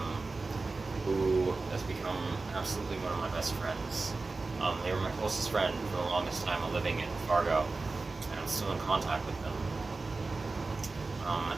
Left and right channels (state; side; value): quieter; left; 3.7 dB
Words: who has become absolutely one of my best friends. They were my closest friend for the longest time living in Fargo, and I'm still in contact with them.